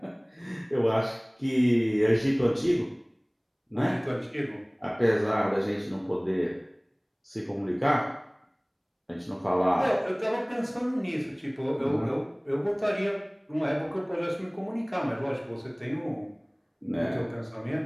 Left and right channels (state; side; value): identical; both; correlation 1.00